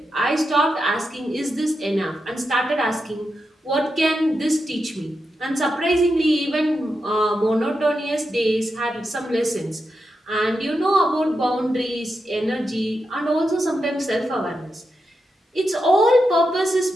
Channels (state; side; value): normal; both; correlation 0.87